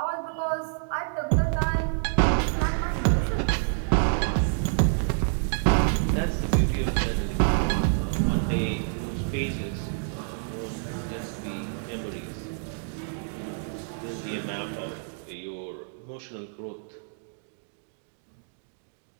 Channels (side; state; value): left; silent; digital silence